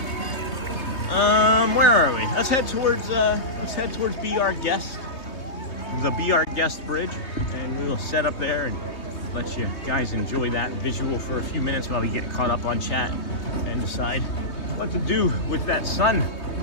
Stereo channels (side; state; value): right; late; 3.2 ms